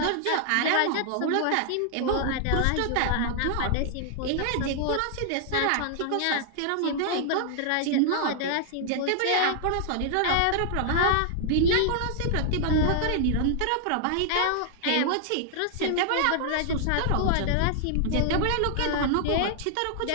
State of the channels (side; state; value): both; different; correlation -0.01